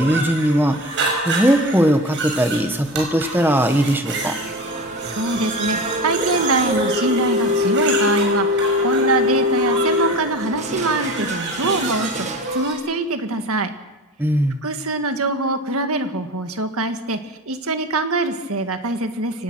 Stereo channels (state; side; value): normal; both; correlation 0.32